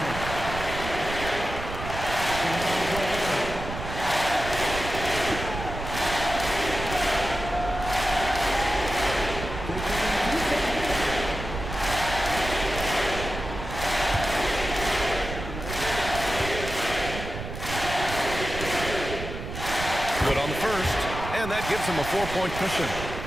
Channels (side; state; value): right; noise; rumble, 8 dB below the sound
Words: Good on the first, and that gives him a 4-point cushion.